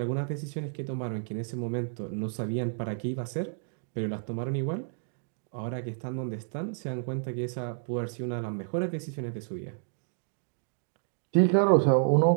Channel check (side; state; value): left; silent; digital silence